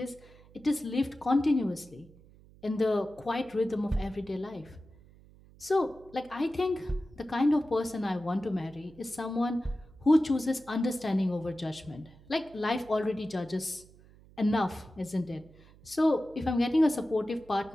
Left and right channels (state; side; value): noise; right; hum, 24 dB below the sound